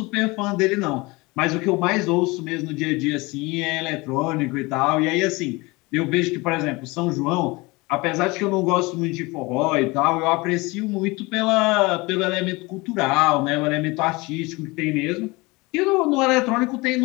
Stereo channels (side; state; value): right; quieter; 24.0 dB